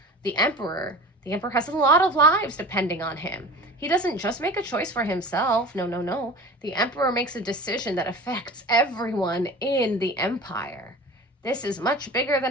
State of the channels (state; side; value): normal; both; correlation 0.38